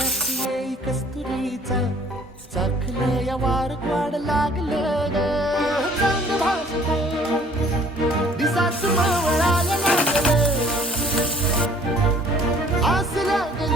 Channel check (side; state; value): both; normal; correlation 0.56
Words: कस्तुरीचा चाखलं या वार वाड लागलं ग चांद भाजलं दिसाच मावळायला लागलं आस